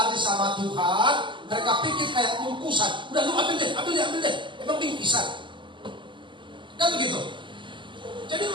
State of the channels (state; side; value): late; left; 0.24 ms